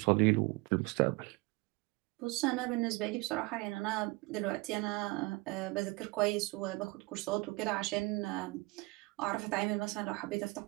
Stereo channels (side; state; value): left; quieter; 24.5 dB